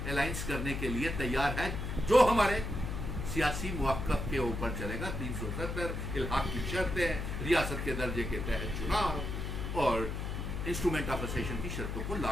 अलायंस करने के लिए तैयार है, जो हमारे सियासी मुआक्कब के ऊपर चलेगा। 370 इल्हाक की शर्तें, रियासत के दर्जे के तहत चुनाव और इंस्ट्रूमेंट ऑफ असेशन की शर्तों को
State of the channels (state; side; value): noise; left; hum, 4 dB below the sound